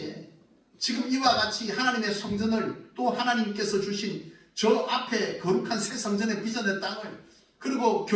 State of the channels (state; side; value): identical; both; correlation 1.00